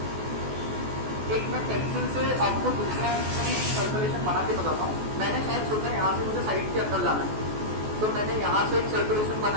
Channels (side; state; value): left; late; 14 ms